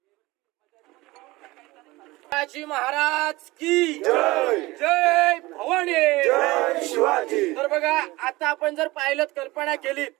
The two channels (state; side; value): quieter; left; 20.6 dB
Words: शिवाजी महाराज की जय. जय भवानी. जय शिवाजी. तर बघा आता आपण जर पाहिलं, कल्पना केली